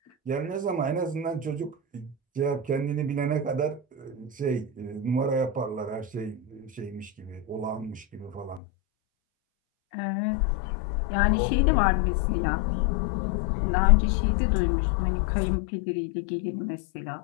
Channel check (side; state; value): right; drops out; at 8.6 s